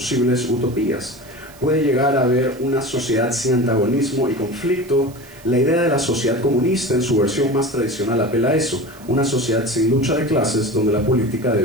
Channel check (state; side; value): noise; right; hiss, 23 dB below the sound